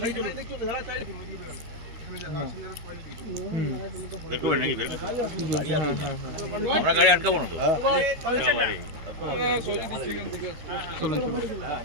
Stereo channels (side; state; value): left; late; 13 ms